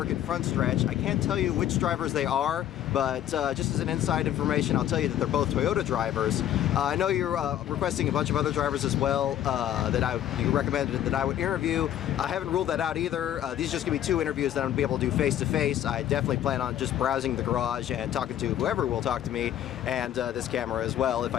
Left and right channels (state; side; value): quieter; right; 11.5 dB